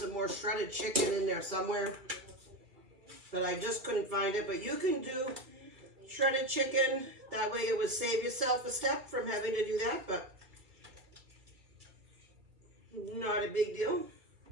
more shredded chicken in there somewhere, but I just couldn't find it. But you can do shredded chicken. That way it would save yourself a step from having to do that, but not a big deal.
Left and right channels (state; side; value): late; left; 2.4 ms